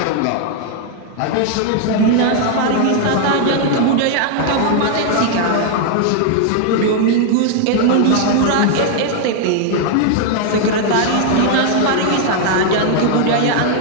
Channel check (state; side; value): different; both; correlation 0.00